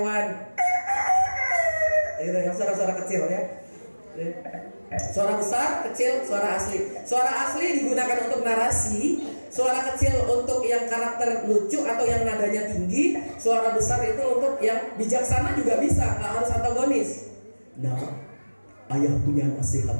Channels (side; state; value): both; inverted; correlation -1.00